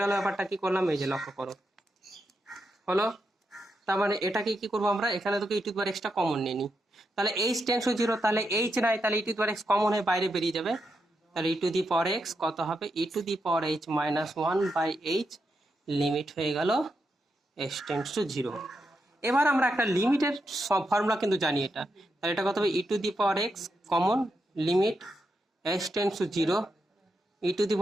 গেল ব্যাপারটা কি করলাম, এই যে লক্ষ্য করো হলো। তার মানে এটাকে কি করবো আমরা, এখানে তোকে ই টু দি পাওয়ার এক্সটা কমন নিয়ে নিই। তাহলে এইচ টেন্ডস টু 0, তাহলে এইচ নাই, তাহলে e to the power x common হয়ে বাইরে বেরিয়ে যাবে। তাহলে e to the power x কত হবে, e to the power h minus 1 by h, limit হয়ে গেল s টেন্ডস টু 0। এবার আমরা একটা লিমিটের সব ফর্মুলা কিন্তু জানি এটা, তাহলে এটা কত হবে e to the power x common, limit s tends to 0 e to the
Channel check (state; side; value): normal; both; correlation 0.84